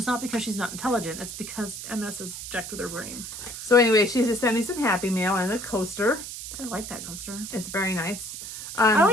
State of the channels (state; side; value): noise; right; hiss, 9 dB below the sound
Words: not because she's not intelligent. It's because MS is jacked with her brain. So anyway, she just sent me some Happy Mail and a coaster. I like that coaster. It's very nice. I